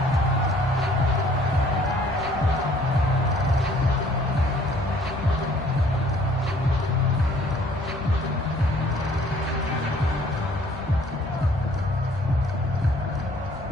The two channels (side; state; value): both; normal; correlation 0.58